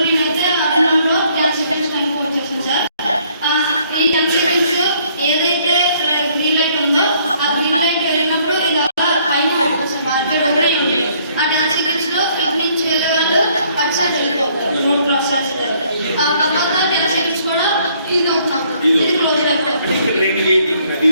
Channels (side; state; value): both; inverted; correlation -0.64